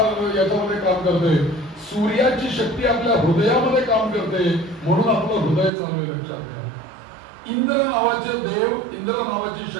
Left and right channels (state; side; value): drops out; left; at 5.7 s